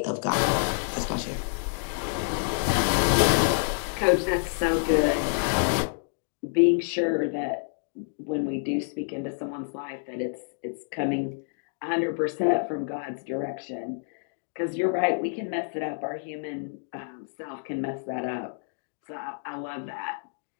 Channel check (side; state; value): right; silent; digital silence